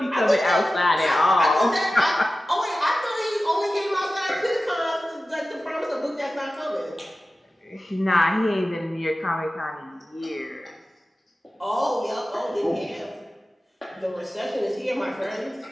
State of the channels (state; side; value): normal; both; correlation 0.95